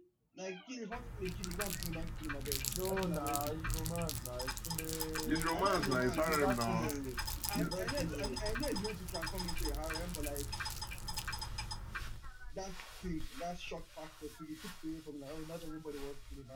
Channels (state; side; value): identical; both; correlation 1.00